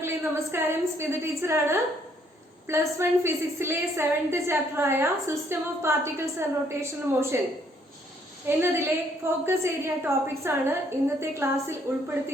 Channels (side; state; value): both; normal; correlation 0.67